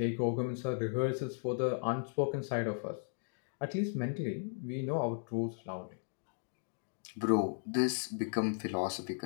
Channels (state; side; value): silent; right; digital silence